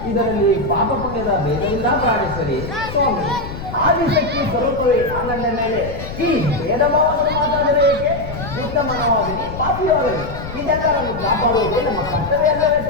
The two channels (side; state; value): left; noise; rumble, 10 dB below the sound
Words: ಇದರಲ್ಲಿ ಪಾಪ ಪುಣ್ಯದ ಭೇದವಿಲ್ಲ ಪ್ರಾಣೇಶ್ವರಿ. ಸ್ವಾಮಿ, ಆದಿಶಕ್ತಿ ಸ್ವರೂಪವೇ ನಾನಂದ ಮೇಲೆ ಈ ಭೇದ ಭಾವವನ್ನು ಮಾತಾದರೆ ಏಕೆ? ಉತ್ತಮನವಾಗಲಿ ಪಾಪಿಯಾಗಲಿ ಇದೆಲ್ಲವನ್ನು ಕಾಪಾಡುವುದೇ ನಮ್ಮ ಕರ್ತವ್ಯ ಅಲ್ಲವೇ